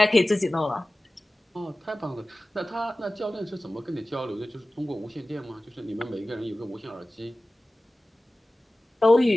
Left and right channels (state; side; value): normal; both; correlation 0.97